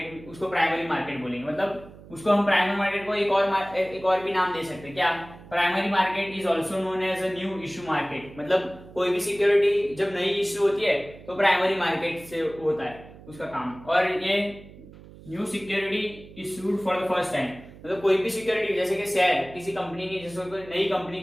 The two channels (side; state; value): right; noise; hum, 19 dB below the sound